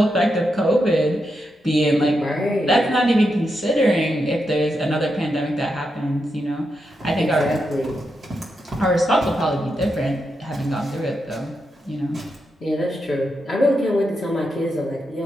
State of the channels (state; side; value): normal; both; correlation 0.85